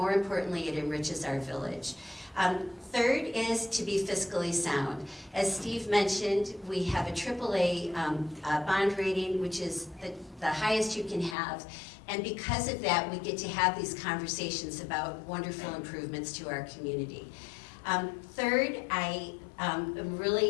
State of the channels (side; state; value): right; drops out; at 11.4 s